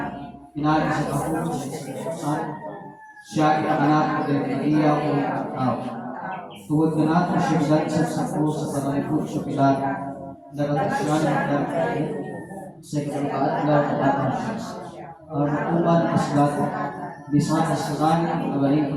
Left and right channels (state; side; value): identical; both; correlation 1.00